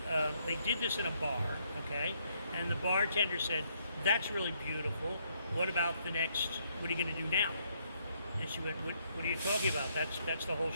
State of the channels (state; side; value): inverted; both; correlation -0.72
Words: did this in a bar, okay? And the bartender said, "That's really beautiful. What about the next? What are you going to do now?" And she went, "What are you talking about? That's the whole